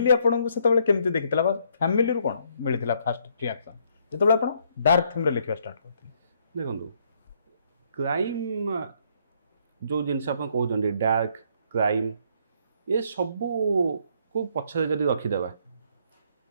ଆପଣଙ୍କୁ ସେତେବେଳେ କେମିତି ଦେଖିଥିଲା ବା ଫ୍ୟାମିଲିରୁ କ'ଣ ମିଳିଥିଲା ଫାଷ୍ଟ ରିଆକ୍ସନ୍ ଯେତେବେଳେ ଆପଣ ଡାର୍କ ଥିମ୍ରେ ଲେଖିବା ଷ୍ଟାର୍ଟ କରିଥିଲେ? ଦେଖନ୍ତୁ, କ୍ରାଇମ୍ ଯେଉଁ ଜିନିଷ ଆପଣ କହୁଛନ୍ତି ଡାର୍କ କ୍ରାଇମ୍, ଏ ସବୁକୁ ପଛରେ ଯଦି ରଖିଦେବା,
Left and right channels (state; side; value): inverted; both; correlation -0.69